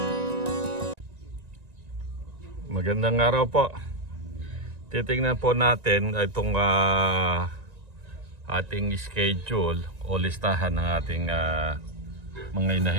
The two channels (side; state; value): left; late; 1.9 ms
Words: araw po. Titingnan po natin itong ating schedule o listahan ng ating mga